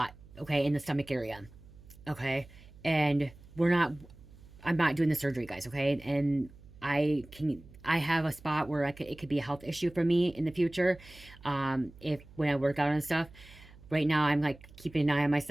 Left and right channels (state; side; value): noise; right; hum, 21 dB below the sound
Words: okay, in the stomach area, okay? And I'm not doing the surgery, guys, okay? And I have a spot where it could be a health issue for me in the future, if, when I work out and stuff. Right now, I'm like keeping an eye on